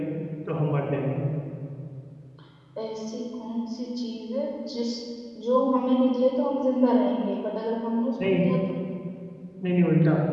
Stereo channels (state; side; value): identical; both; correlation 1.00